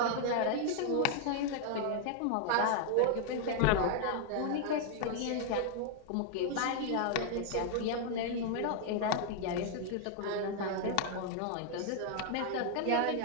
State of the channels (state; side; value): different; both; correlation 0.00